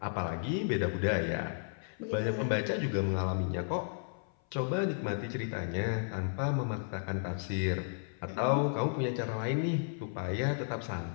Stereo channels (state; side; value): silent; right; 55 dB below the other